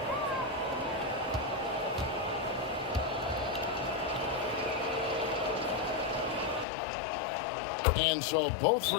And so both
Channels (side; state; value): right; drops out; at 6.7 s